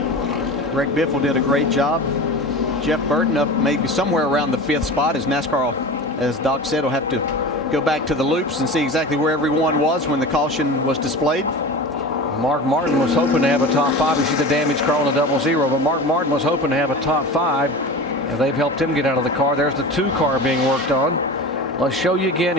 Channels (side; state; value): both; normal; correlation 0.32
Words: Greg Biffle did a great job. Jeff Burton up maybe somewhere around the 5th spot, as NASCAR, as Doc said, will have to go back to the loops and see exactly where everyone was when the caution was displayed. Mark Martin was hoping to have a top 5. You see the damage car on the 00, but Mark Martin was hoping to have a top 5. And they've helped him get out of the car. There's the 2 car being worked on. Let's show you again